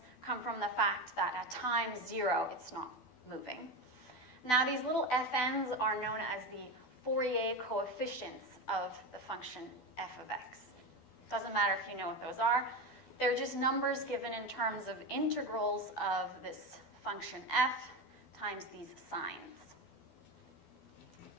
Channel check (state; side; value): late; right; 12 ms